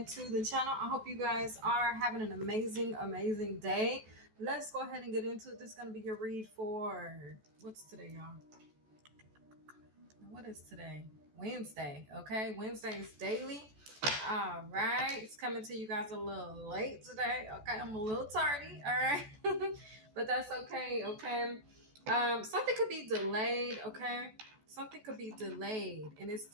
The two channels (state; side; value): late; left; 14 ms